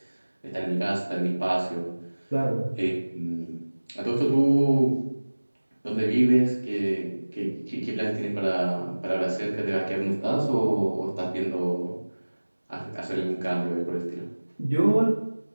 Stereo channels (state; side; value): inverted; both; correlation -1.00